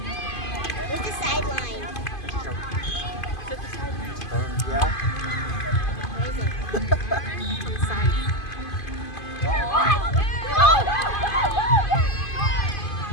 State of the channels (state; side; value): late; right; 2.5 ms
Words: Where's the sideline? Yeah. Where is it? On the side.